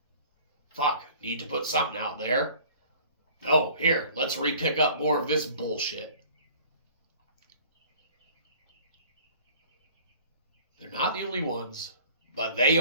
Fuck, need to put something out there. Oh, here, let's re-pick up more of this bullshit. They're not the only ones, but they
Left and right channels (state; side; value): inverted; both; correlation -0.49